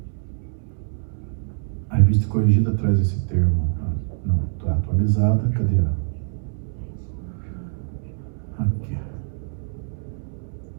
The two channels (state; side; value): silent; left; 62 dB below the other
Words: A revista Corrigida traz esse termo. Não, está atualizada. Cadê a? Aqui.